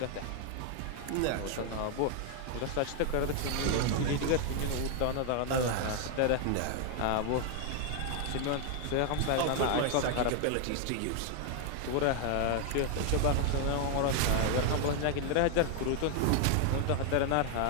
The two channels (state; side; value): different; both; correlation 0.00